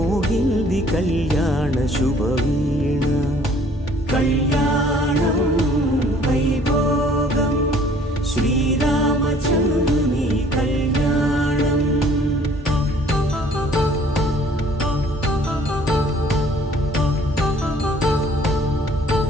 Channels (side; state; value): both; normal; correlation 0.56